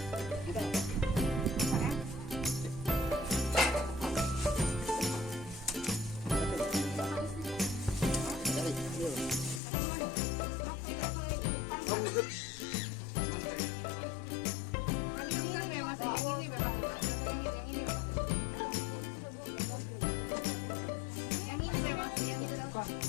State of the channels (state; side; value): drops out; right; at 9.6 s